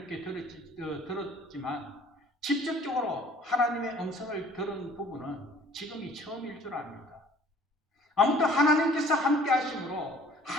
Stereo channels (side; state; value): both; normal; correlation 0.54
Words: 들었지만 직접적으로 하나님의 음성을 들은 부분은 지금이 처음일 줄 압니다. 아무튼 하나님께서 함께 하심으로